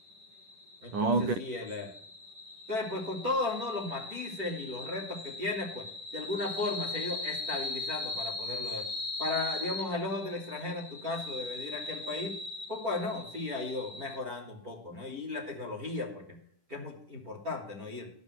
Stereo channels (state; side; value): late; left; 10 ms